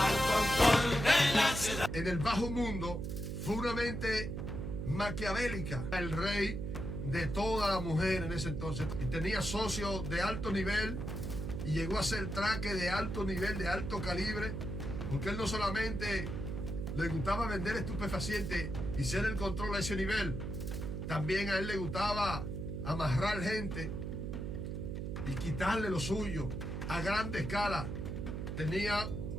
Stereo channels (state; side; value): noise; right; hum, 4 dB below the sound